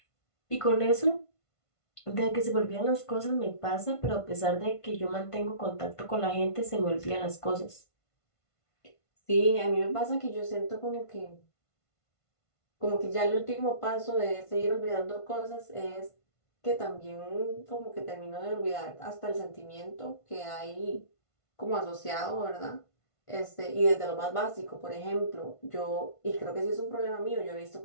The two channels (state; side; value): late; right; 1.5 ms